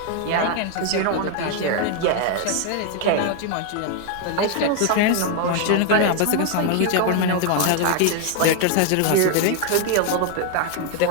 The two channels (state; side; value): different; both; correlation 0.01